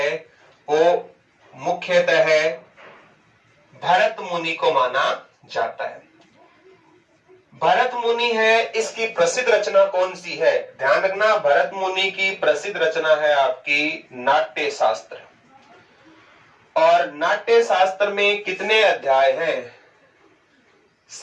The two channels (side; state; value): both; identical; correlation 1.00